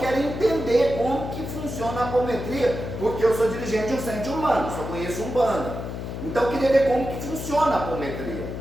entender como que funciona a apometria, porque eu sou dirigente de um centro de Umbanda, só conheço Umbanda. Então eu queria ver como que funciona a apometria.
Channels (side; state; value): left; noise; hum, 6 dB below the sound